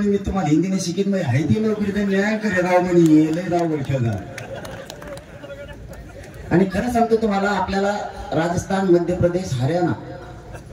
मी तुम्हाला हिंदीने शिकित म्हणजे हायती नोकरी तर न्याय करे राव म्हणे लय राव ठेवला. आणि खरं सांगतो तुम्हाला, आपल्याला राजस्थान, मध्य प्रदेश, हरियाणा,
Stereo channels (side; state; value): both; identical; correlation 1.00